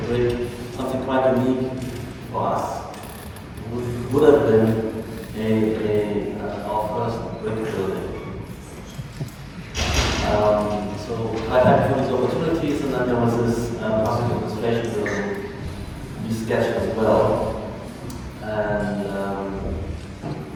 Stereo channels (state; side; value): identical; both; correlation 1.00